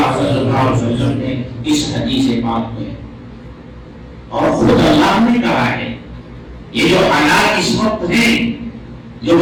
صلی اللہ علیہ وسلم نے اس حدیث پاک میں۔ اور خود اللہ نے کہا ہے یہ جو حالات اس وقت ہیں جو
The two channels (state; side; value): identical; both; correlation 1.00